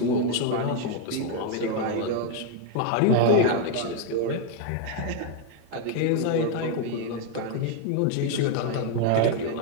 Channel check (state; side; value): different; both; correlation 0.00